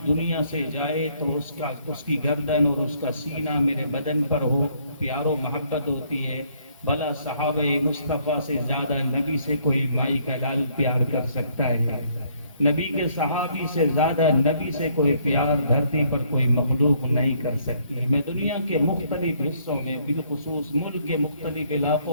دنیا سے جائے تو اس کی گردن اور اس کا سینہ میرے بدن پر ہو۔ پیار و محبت ہوتی ہے۔ بھلا صحابہ مصطفیٰ سے زیادہ نبی سے کوئی مائی کا لال پیار کر سکتا ہے؟ نبی کے صحابی سے زیادہ نبی سے کوئی پیار دھرتی پر کوئی مخلوق نہیں کر سکتی۔ میں دنیا کے مختلف حصوں میں، بالخصوص ملک کے مختلف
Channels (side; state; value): both; inverted; correlation -0.67